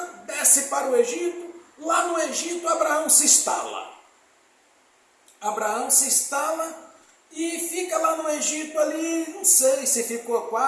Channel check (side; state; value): both; identical; correlation 1.00